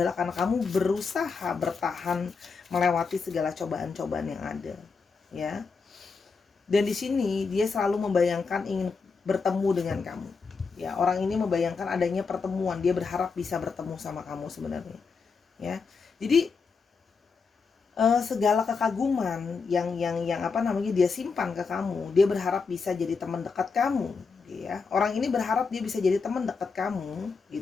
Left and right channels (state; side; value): quieter; right; 4.9 dB